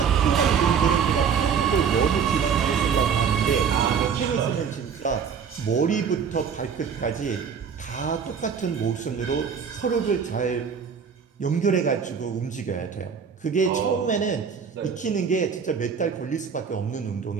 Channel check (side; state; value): left; quieter; 6.7 dB